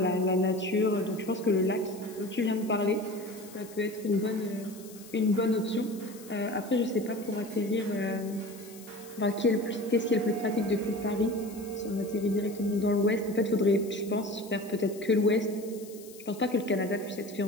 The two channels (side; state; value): left; noise; hiss, 19 dB below the sound